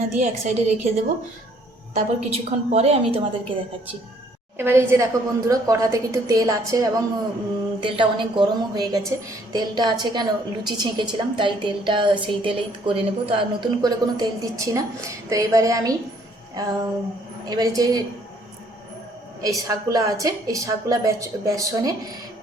দিয়ে এক সাইডে রেখে দেবো। তারপর কিছুক্ষণ পরে আমি তোমাদেরকে দেখাচ্ছি। এবার এই যে দেখো বন্ধুরা, কড়াতে কিন্তু তেল আছে, এবং তেলটা অনেক গরমও হয়ে গেছে। তেলটা আছে কেন, লুচি ছেঁকেছিলাম তাই তেলটা সেই তেলেই করে নেব। তো আর নতুন করে কোনো তেল দিচ্ছি না। তো এবারে আমি এবারে যে এই শাকগুলো আছে, এই শাকগুলো বেসনে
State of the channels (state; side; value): normal; both; correlation 0.63